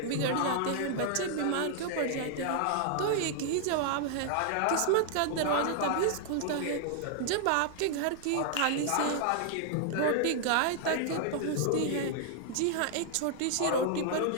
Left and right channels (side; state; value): both; different; correlation -0.01